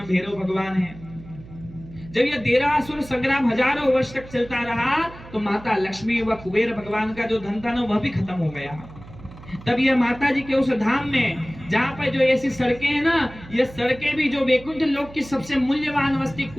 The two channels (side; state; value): right; noise; hum, 18 dB below the sound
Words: भैरव भगवान है। जब यह देरासुर संग्राम हजारों वर्ष तक चलता रहा तो माता लक्ष्मी व कुबेर भगवान का जो धन था ना, वह भी खत्म हो गया। तब यह माता जी के उस धाम में, जहाँ पर जो ऐसी सड़कें हैं ना, ये सड़कें भी जो वैकुंठ लोक की सबसे मूल्यवान वस्तु